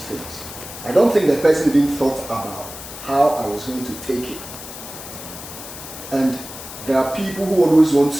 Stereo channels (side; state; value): left; noise; hiss, 12 dB below the sound